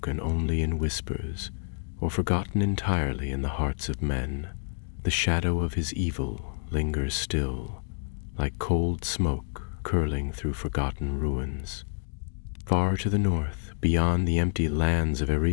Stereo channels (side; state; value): right; silent; digital silence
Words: only in whispers, or forgotten entirely in the hearts of men, the shadow of his evil lingers still, like cold smoke curling through forgotten ruins. Far to the north, beyond the empty lands of